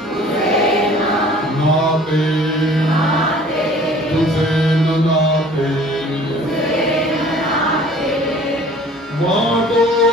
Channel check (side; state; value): both; normal; correlation 0.50